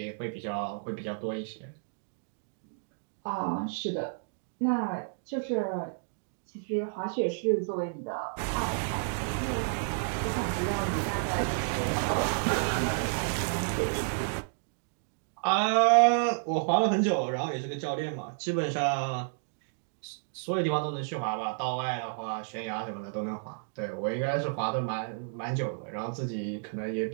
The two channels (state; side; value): silent; left; digital silence